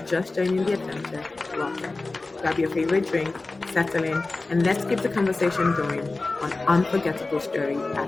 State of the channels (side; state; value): right; quieter; 3.4 dB